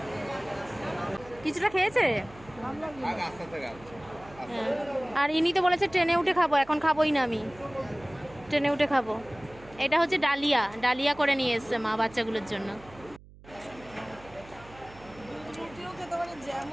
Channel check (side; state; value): right; noise; hum, 21 dB below the sound